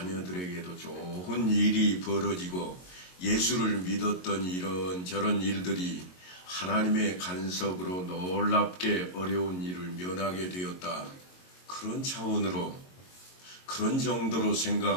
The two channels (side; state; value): right; late; 22 ms